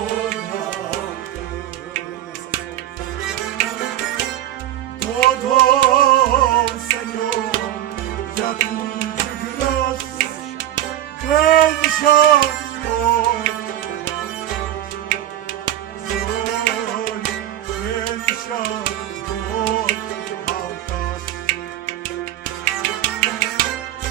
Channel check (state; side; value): quieter; left; 12.6 dB